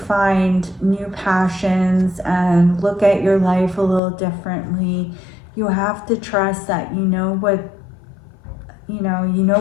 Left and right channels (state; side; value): drops out; right; at 4.0 s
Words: find new passions and look at your life a little differently, you have to trust that you know what